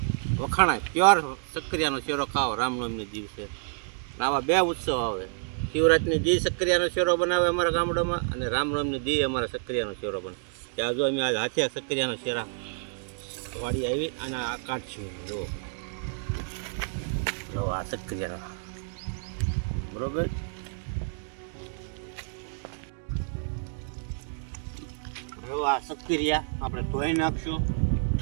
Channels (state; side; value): silent; left; digital silence